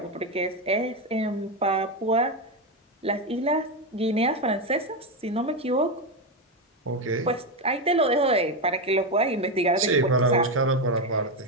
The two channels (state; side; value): normal; both; correlation 0.11